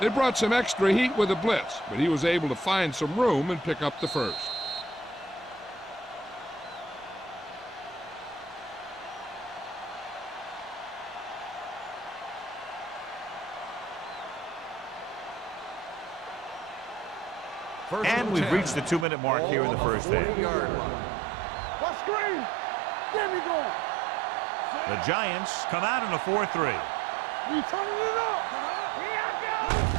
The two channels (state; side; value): drops out; left; at 19.1 s